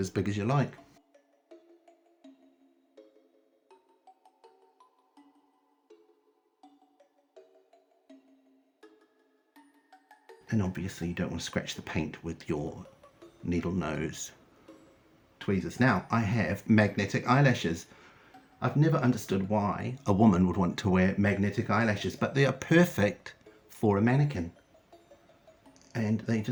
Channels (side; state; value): both; identical; correlation 1.00